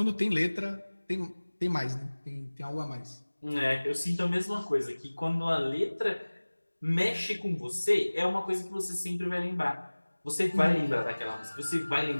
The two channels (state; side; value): inverted; both; correlation -1.00